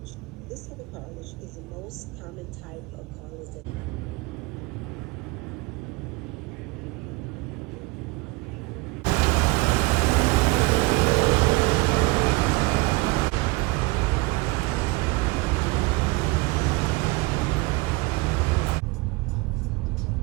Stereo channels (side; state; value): left; quieter; 23.9 dB